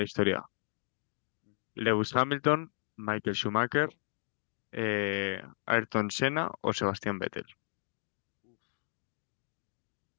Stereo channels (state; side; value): silent; right; digital silence